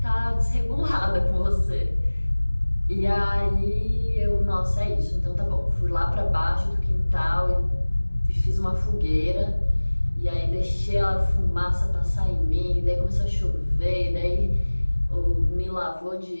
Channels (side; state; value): both; inverted; correlation -1.00